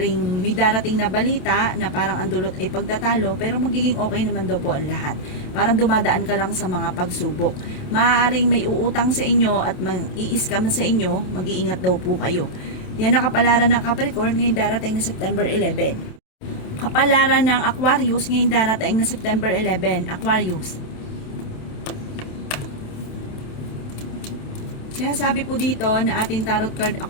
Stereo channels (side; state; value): right; late; 27 ms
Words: may darating na balita na parang ang dulot ay pagtatalo pero magiging okay naman daw po ang lahat. Parang dumadaan ka lang sa mga pagsubok. Maaaring may uutang sa inyo at mag-i-scam sa inyo, mag-iingat daw po kayo. Yan ang kapalaran ng Capricorn ngayong darating na September 11. Kapalaran ng Aquarius ngayong darating na September 11. Aquarius. Sinasabi po dito na ating tarot card